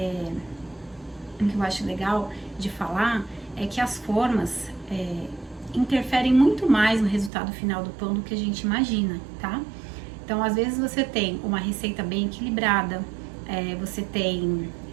o que eu acho legal de falar é que as formas interferem muito mais no resultado final do pão do que a gente imagina, tá? Então, às vezes você tem uma receita bem equilibrada, você tem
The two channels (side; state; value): left; drops out; at 7.3 s